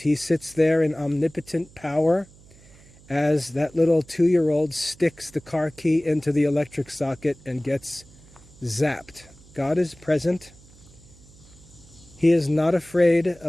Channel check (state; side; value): noise; right; hum, 25 dB below the sound